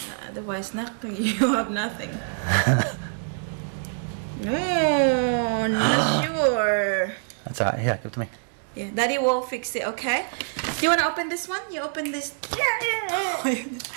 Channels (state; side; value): silent; left; digital silence